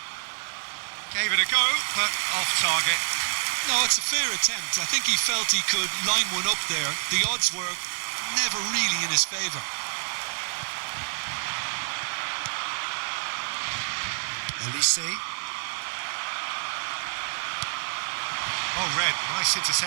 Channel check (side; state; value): left; silent; 56 dB below the other